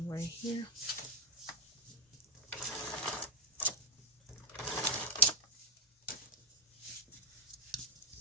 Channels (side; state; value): both; normal; correlation 0.01